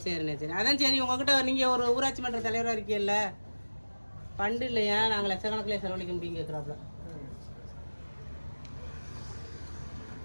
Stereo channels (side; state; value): both; inverted; correlation -1.00